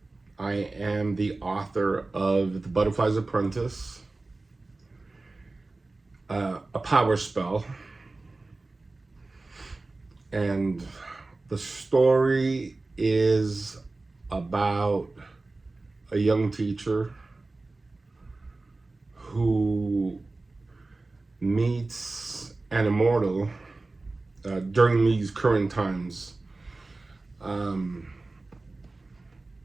I am the author of The Butterfly's Apprentice, a power spell, and the story is about a young teacher who meets an immortal during these current times. Um,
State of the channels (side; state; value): left; quieter; 3.3 dB